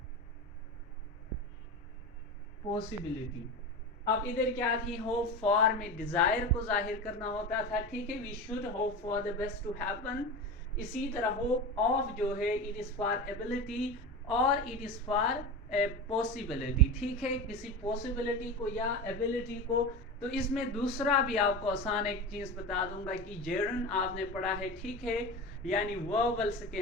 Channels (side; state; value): both; normal; correlation 0.26